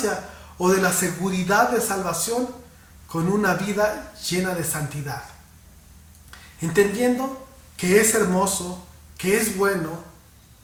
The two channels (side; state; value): both; identical; correlation 1.00